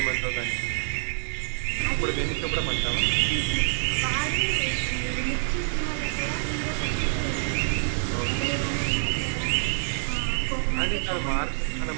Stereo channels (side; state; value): left; silent; 60 dB below the other